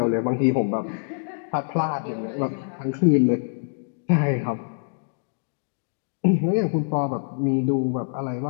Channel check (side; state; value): right; silent; 62 dB below the other